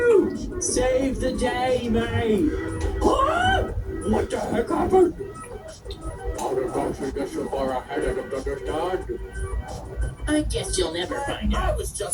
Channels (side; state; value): both; identical; correlation 1.00